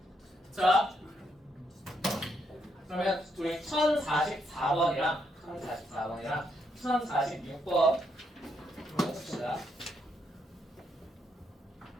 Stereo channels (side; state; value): both; normal; correlation 0.77